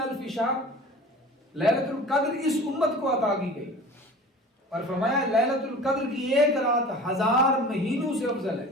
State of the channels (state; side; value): normal; both; correlation 0.40